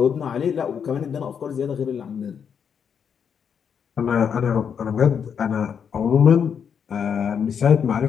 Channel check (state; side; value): quieter; right; 7.3 dB